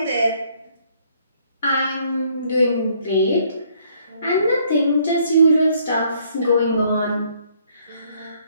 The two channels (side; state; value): both; inverted; correlation -0.65